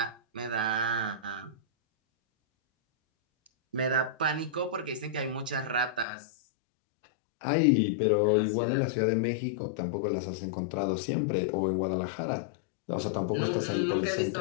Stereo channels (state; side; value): drops out; right; at 6.1 s